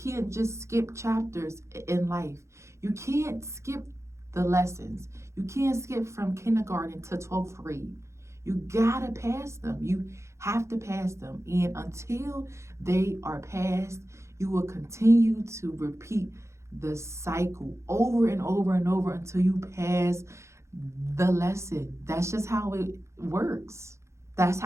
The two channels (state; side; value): late; left; 0.14 ms